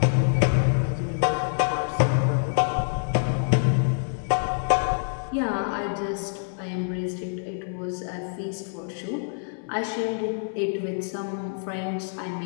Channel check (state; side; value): silent; right; digital silence